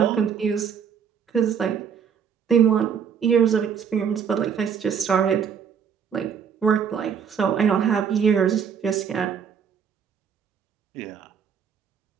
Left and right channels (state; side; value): quieter; left; 7.4 dB